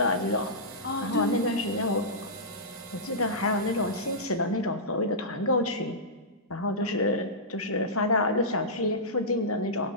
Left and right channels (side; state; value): both; normal; correlation -0.15